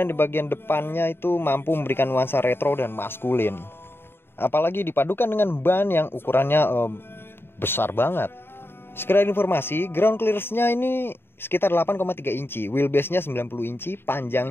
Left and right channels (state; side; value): late; right; 0.11 ms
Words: di bagian depannya itu mampu memberikan nuansa retro dan maskulin. Apalagi dipadukan dengan ban yang ukurannya besar banget. Sekedar informasi, ground clearance-nya ini sekitar 8,3 inci, wheelbase-nya 90 inci,